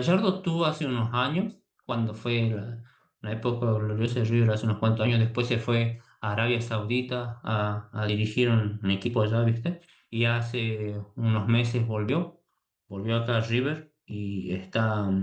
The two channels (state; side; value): identical; both; correlation 1.00